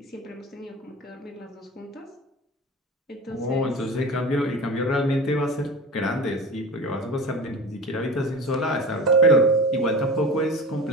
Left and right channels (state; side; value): normal; both; correlation 0.33